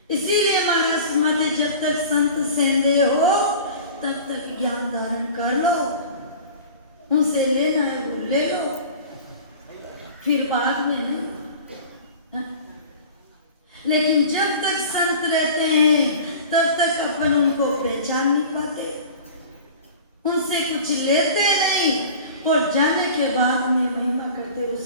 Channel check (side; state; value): both; inverted; correlation -0.39